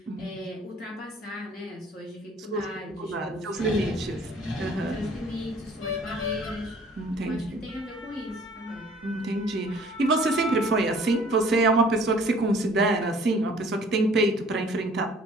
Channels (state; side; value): normal; both; correlation 0.54